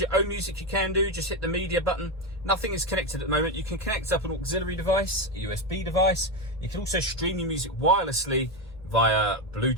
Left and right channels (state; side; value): normal; both; correlation 0.10